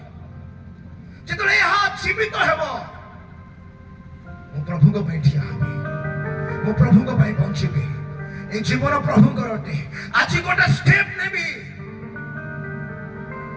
ଯେତେବେଳେ ଏହା ଜୀବିତ ହେବ ମୁଁ ପ୍ରଭୁଙ୍କ ପାଇଁ ଠିଆ ହେବି ମୁଁ ପ୍ରଭୁଙ୍କ ପାଇଁ ବଞ୍ଚିବି ଏ ଜୀବନ ପ୍ରଭୁଙ୍କର ଅଟେ ଆଜି ଗୋଟେ ଷ୍ଟେପ୍ ନେବି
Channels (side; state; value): both; identical; correlation 1.00